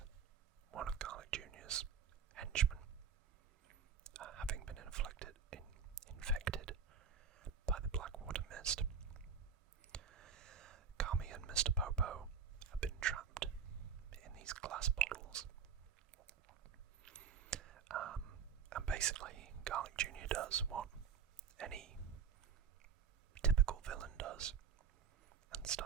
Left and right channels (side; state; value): left; quieter; 6.6 dB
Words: one of Garlic Jr.'s henchmen, having been infected by the Blackwater Mist. Kami and Mr. Popo have been trapped in these glass bottles. And basically, Garlic Jr. does what any typical villain does, and